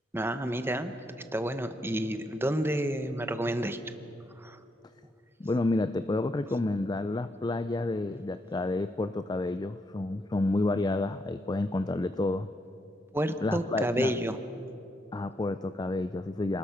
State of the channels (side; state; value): both; normal; correlation 0.78